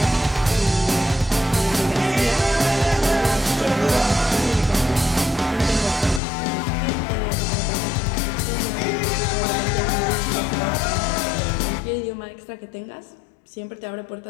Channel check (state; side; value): drops out; right; at 6.2 s